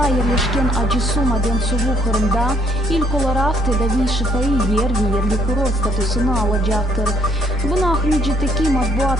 жерлешкен Ажысуу Маден суу Кырымда илк оларак тедави шифаи ерлик курорт статусуну алажактыр. Буну Ахмеджитеки матбуат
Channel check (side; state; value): both; normal; correlation 0.63